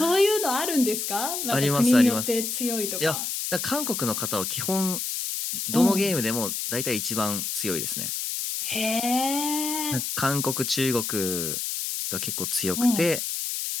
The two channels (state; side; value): noise; left; hiss, 3 dB below the sound